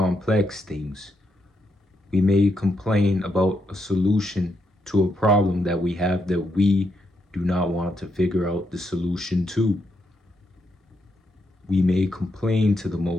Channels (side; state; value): both; normal; correlation 0.80